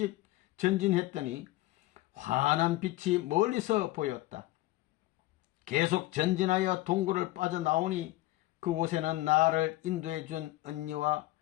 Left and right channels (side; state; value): right; quieter; 17.7 dB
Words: 전진했더니 환한 빛이 멀리서 보였다. 계속 전진하여 동굴을 빠져나오니 그곳에는 나를 인도해 준 언니와